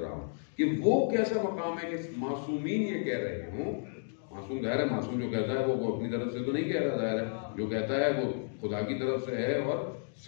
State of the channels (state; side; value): silent; right; 56 dB below the other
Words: رہا ہوں کہ وہ کیسا مقام ہے کہ معصومین یہ کہہ رہے ہوں۔ معصوم ظاہر ہے، معصوم جو کہتا ہے وہ اپنی طرف سے تو نہیں کہہ رہا، ظاہر ہے جو کہتا ہے وہ خدا کی طرف سے ہے اور